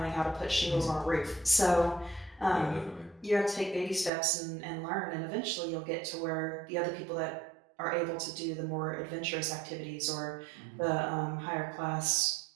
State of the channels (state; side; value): drops out; left; at 4.1 s